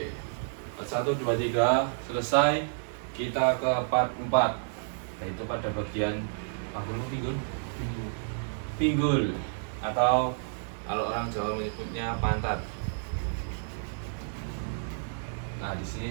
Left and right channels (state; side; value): silent; left; digital silence